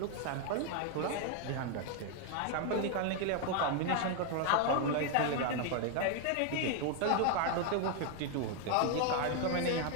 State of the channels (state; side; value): different; both; correlation 0.00